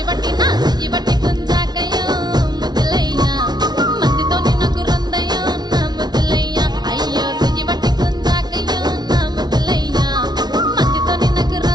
గుంజాకయ్యో ముద్దులయ్యా మందితో నాకు రొందయ్యో నా ముద్దులయ్యా అయ్యో చెయ్యి పట్టి గుంజాకయ్యో నా ముద్దులయ్యా మందితో నాకు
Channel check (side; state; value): left; late; 0.19 ms